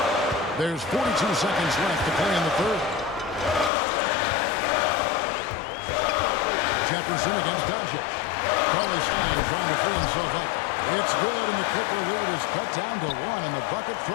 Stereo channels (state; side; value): drops out; right; at 3.7 s